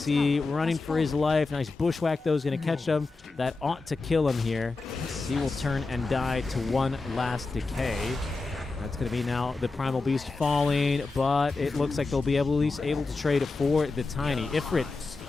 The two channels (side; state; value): right; quieter; 3.7 dB